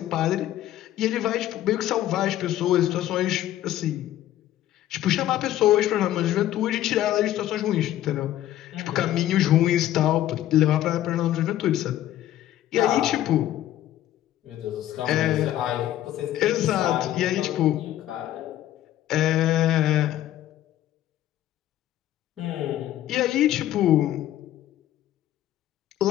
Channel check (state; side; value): quieter; right; 13.1 dB